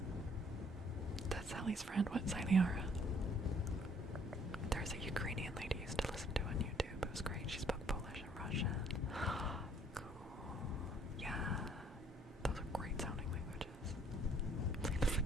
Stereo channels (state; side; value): normal; both; correlation 0.61